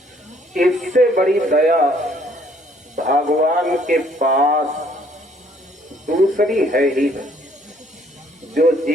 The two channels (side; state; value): both; normal; correlation 0.63